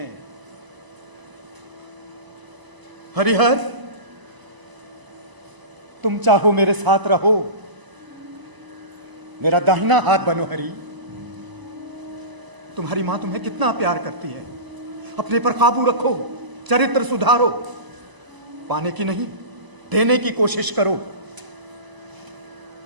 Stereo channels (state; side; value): late; left; 1.0 ms